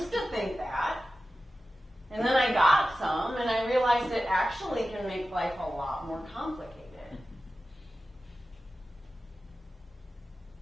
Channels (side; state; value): both; normal; correlation 0.94